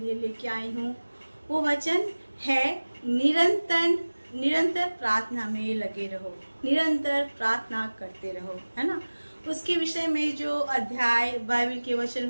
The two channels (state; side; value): inverted; both; correlation -1.00